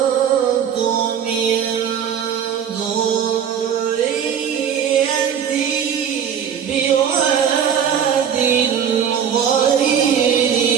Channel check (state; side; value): quieter; left; 8.2 dB